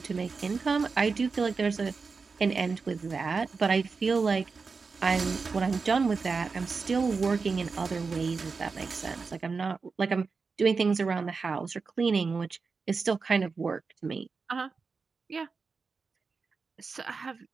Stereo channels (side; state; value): left; quieter; 4.7 dB